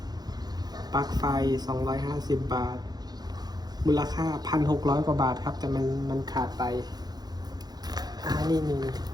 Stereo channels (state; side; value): late; left; 0.19 ms